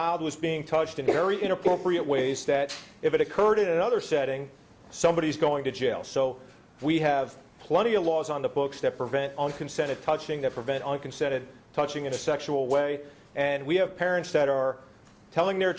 was being touched in very inappropriate ways that if it occurred in another setting, somebody's going to jail. So we have plenty of laws on the books that prevent unconsented touching, that prevent unconsented touching in a sexual way. And we have parents that are telling their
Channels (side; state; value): both; identical; correlation 1.00